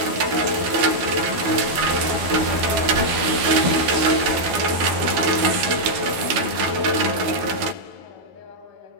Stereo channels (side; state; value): left; late; 12 ms